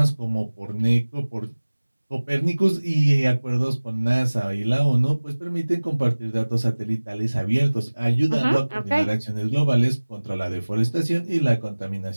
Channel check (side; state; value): both; inverted; correlation -1.00